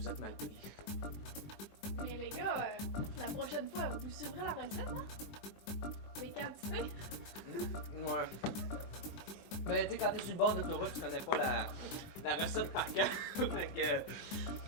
êtes mal pris. Et les gars, la prochaine fois, vous suivrez la recette, hein? Les quantités? Ouais. Ben, tu sais, quand t'es sur le bord d'autoroute, tu connais pas la recette par cœur.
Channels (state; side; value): late; right; 20 ms